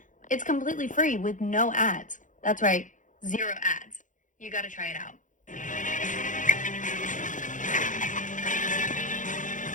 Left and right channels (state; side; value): late; right; 0.37 ms